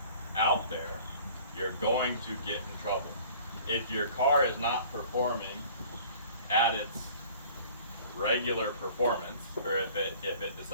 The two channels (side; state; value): both; inverted; correlation -0.49